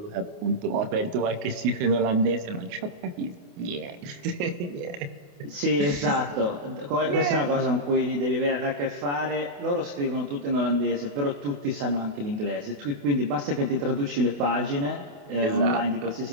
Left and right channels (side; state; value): left; late; 28 ms